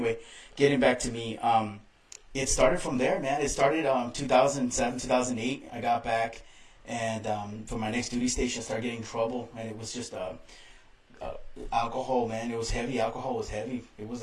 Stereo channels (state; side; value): identical; both; correlation 1.00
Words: getting back to me, it started from there, man. It started 2007, 2008. I got back, and for my next duty station, I started getting in trouble, and it was just alcohol, man. It was heavy. Alcohol was heavy. It was